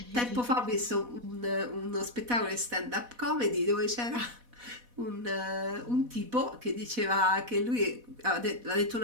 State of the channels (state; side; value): late; left; 4.1 ms